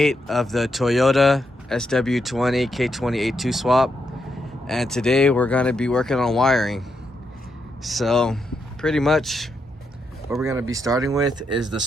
of the Toyota sw20 k20a2 swap, and today we're going to be working on wiring. So pretty much what we're going to be starting with is the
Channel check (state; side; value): normal; both; correlation 0.81